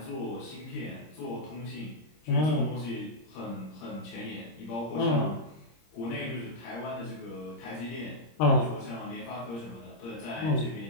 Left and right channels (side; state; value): right; late; 26 ms